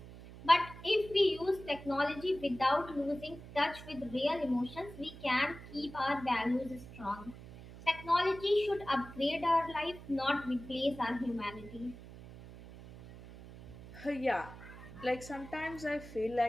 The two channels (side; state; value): right; noise; hum, 16 dB below the sound